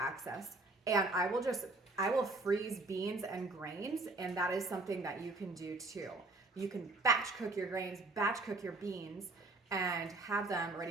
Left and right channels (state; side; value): quieter; left; 3.2 dB